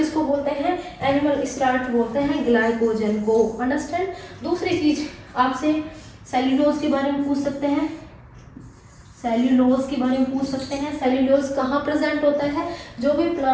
बोलते हैं, एनिमल स्टार्च बोलते हैं ग्लाइकोजन को। अंडरस्टैंड? दूसरी चीज आपसे सेल्यूलोज के बारे में पूछ सकते हैं, सेल्यूलोज के बारे में पूछ सकते हैं। सेल्यूलोज कहाँ प्रेजेंट होता है, जो भी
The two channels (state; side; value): identical; both; correlation 1.00